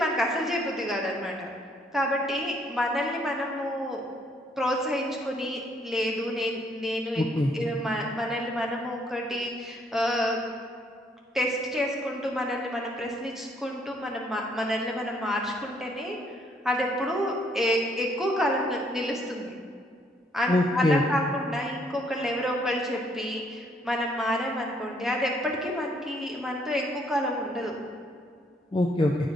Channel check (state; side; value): normal; both; correlation 0.67